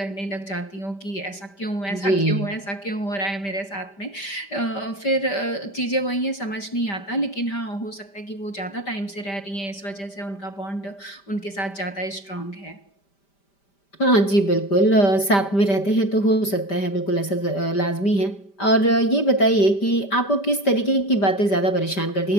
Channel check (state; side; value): late; right; 5.1 ms